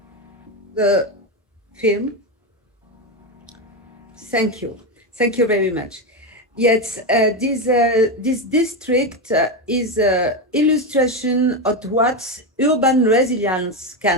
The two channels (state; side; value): normal; both; correlation 0.12